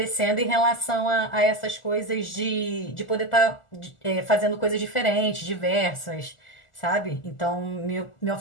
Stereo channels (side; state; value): right; late; 1.4 ms